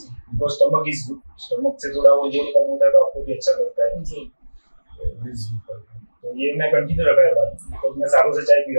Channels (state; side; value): inverted; both; correlation -1.00